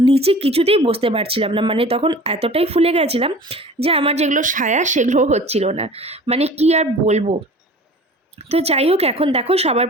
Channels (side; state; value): both; normal; correlation 0.42